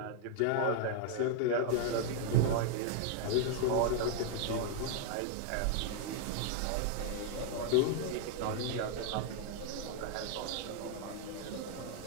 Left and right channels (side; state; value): both; different; correlation 0.00